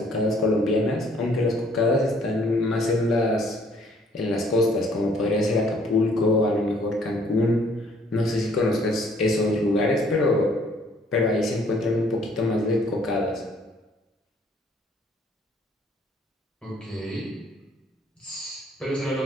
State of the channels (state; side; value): normal; both; correlation 0.61